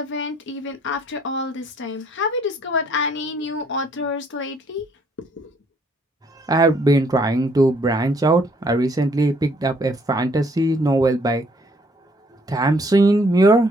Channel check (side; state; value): both; normal; correlation 0.65